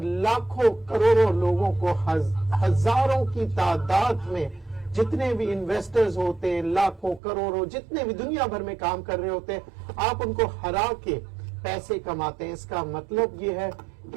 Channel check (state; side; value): drops out; left; at 7.2 s